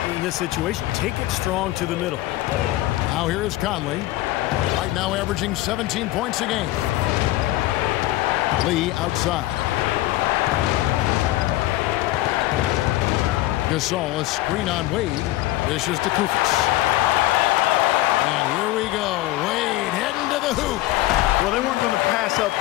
in this situation. Take it strong to the middle. Now here is Conley. Right now averaging 17 points a game. Lee outside. Gasol, a screen on Wade. Dishes to Koufos. And here we go. Wade heading to the hoop. Well, they weren't going to pass up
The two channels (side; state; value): right; quieter; 16.9 dB